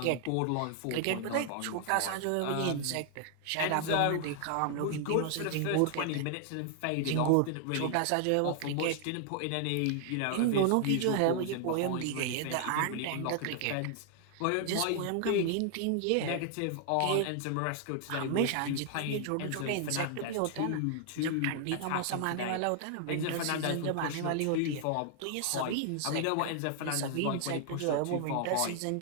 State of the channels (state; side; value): different; both; correlation 0.00